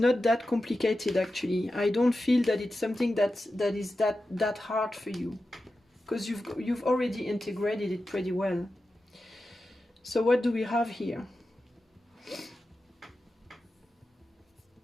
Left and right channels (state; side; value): normal; both; correlation 0.92